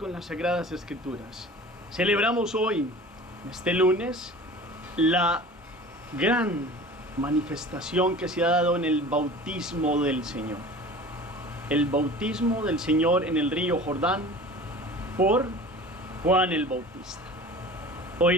las Sagradas Escrituras. Celebramos hoy, este lunes, la gran manifestación que se ha dado en el bautismo del Señor. El bautismo del Señor en el río Jordán por Juan el Bautista.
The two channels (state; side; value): normal; both; correlation 0.40